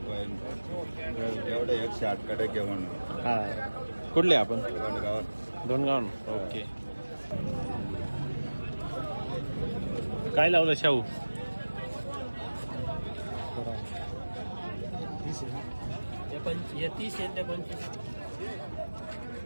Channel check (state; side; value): inverted; both; correlation -1.00